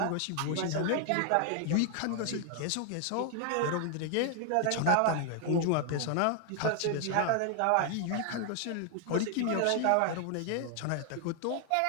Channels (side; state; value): both; different; correlation 0.00